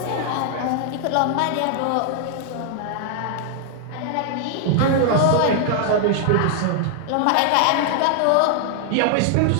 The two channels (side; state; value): both; different; correlation 0.00